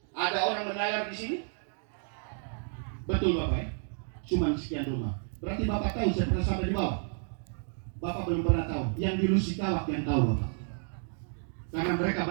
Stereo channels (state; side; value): silent; left; 57 dB below the other